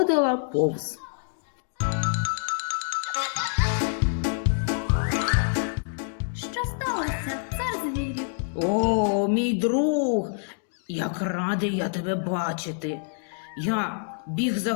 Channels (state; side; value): silent; right; digital silence